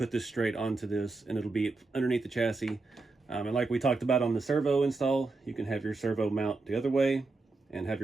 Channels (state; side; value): quieter; left; 3.6 dB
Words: this straight onto this and it'll be underneath the chassis. And like we talked about on the servo install, you can have your servo mount the other way and have